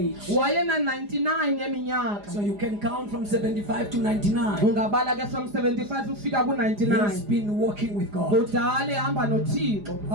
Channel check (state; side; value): late; left; 4.9 ms